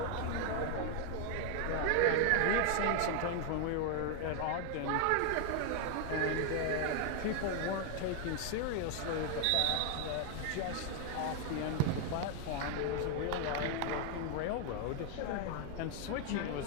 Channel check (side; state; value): both; different; correlation 0.01